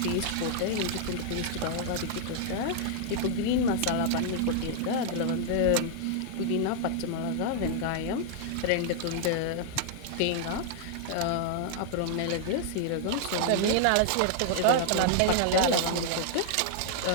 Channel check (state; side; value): different; both; correlation -0.01